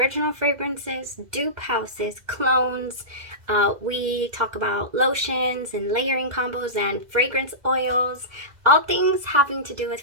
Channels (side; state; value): left; late; 2.0 ms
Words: fragrances, dupe houses, clones. We talk about lotions and layering combos and fragrance oils. All things having to do with